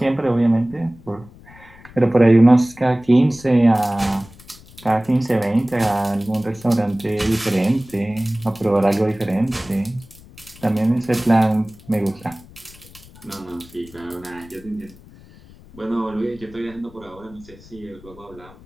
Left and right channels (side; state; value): left; noise; rumble, 22 dB below the sound